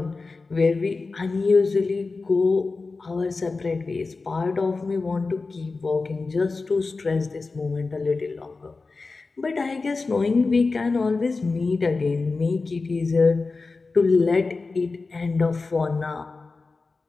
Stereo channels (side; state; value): right; quieter; 3.9 dB